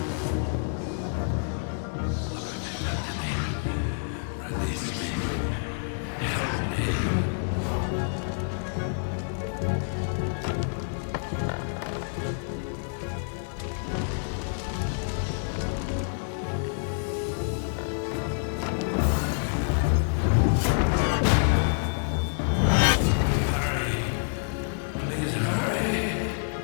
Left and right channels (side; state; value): right; silent; digital silence